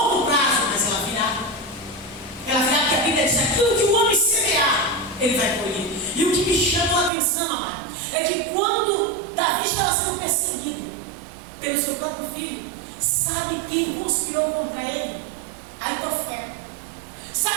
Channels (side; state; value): left; drops out; at 7.1 s